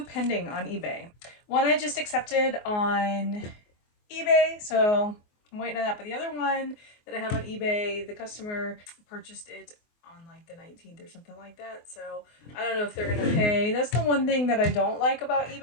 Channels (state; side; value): late; right; 24 ms